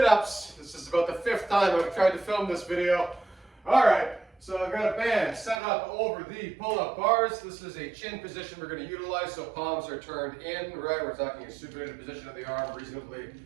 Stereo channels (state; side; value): drops out; left; at 5.6 s